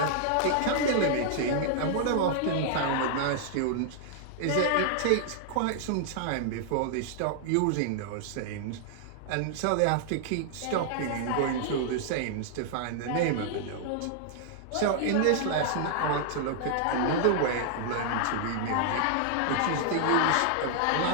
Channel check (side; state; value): both; different; correlation -0.01